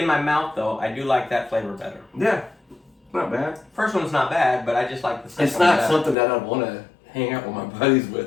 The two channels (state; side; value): drops out; right; at 6.2 s